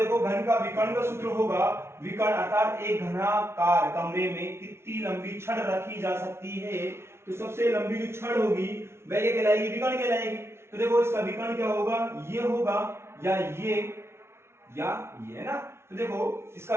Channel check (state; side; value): late; left; 0.12 ms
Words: घन का विकर्ण का सूत्र होगा विकर्ण, अर्थात एक घनाकार कमरे में कितनी लंबी छड़ रखी जा सकती है। तो सबसे लंबी जो छड़ होगी वह क्या कहलाएगी? विकर्ण कहलाएगी। तो देखो, इसका विकर्ण क्या होगा? ये होगा या ये है ना। तो देखो, इसका